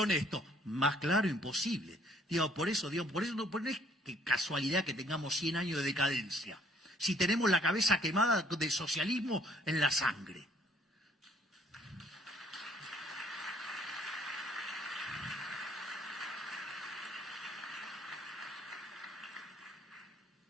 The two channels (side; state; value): both; normal; correlation 0.62